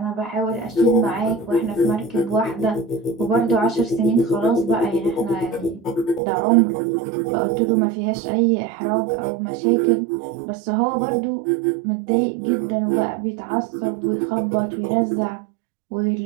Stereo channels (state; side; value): drops out; left; at 6.2 s